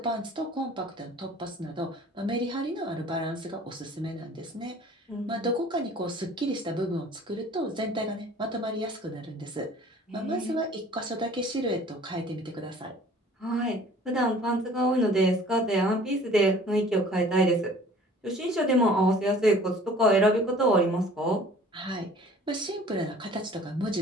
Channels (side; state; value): both; normal; correlation 0.50